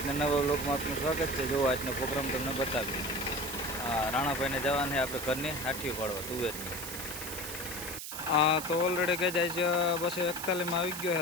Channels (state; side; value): noise; right; hiss, 7 dB below the sound